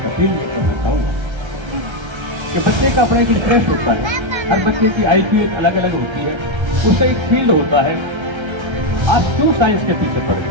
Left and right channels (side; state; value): left; late; 1.3 ms